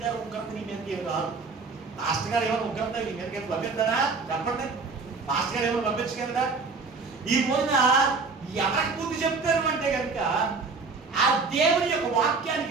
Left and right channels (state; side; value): quieter; left; 4.4 dB